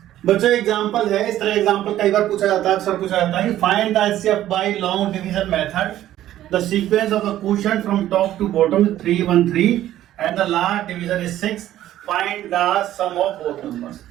बच्चों एग्जांपल है, इस तरह एग्जांपल कई बार पूछा जाता है, अक्सर पूछा जाता है, find the HCF by long division method, the sequence of the quotient from top to bottom 3 1 3 and the last division is 6, find the sum of both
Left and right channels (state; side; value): quieter; left; 13.1 dB